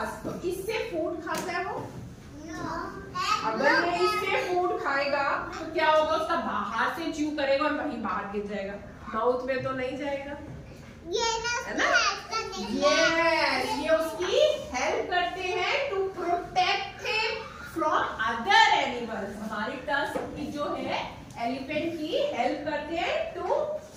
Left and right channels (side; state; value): both; identical; correlation 1.00